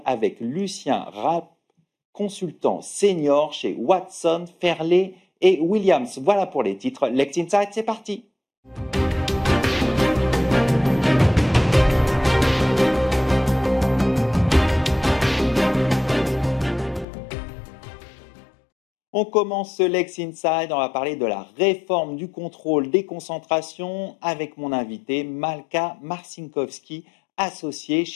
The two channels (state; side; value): drops out; right; at 17.1 s